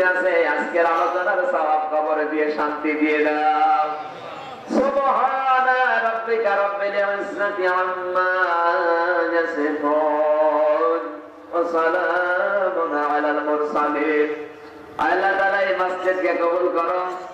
আছে আজকের আলোচনার সওয়াব কবরে দিয়ে শান্তি দিয়ে দাও। সুবহানা রাব্বিকা রাব্বিল ইজ্জাতি আম্মা ইয়াসিফুন ওয়া সালামুন আলাল মুরসালিন। আল্লাহ তাআলা এই মসজিদকে কবুল করো,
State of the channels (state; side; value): identical; both; correlation 1.00